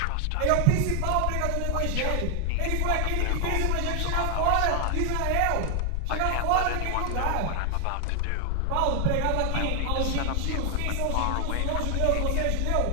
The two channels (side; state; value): both; different; correlation 0.00